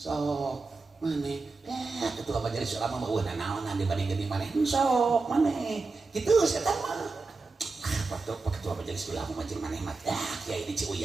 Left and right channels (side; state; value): left; quieter; 3.9 dB